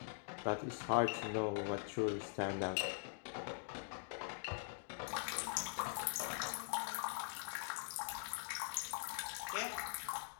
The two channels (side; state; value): right; silent; digital silence